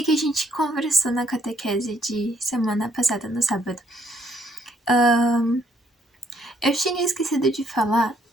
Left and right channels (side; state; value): both; normal; correlation 0.68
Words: a gente conversou na catequese de semana passada, no sábado? Eu tinha esquecido de falar,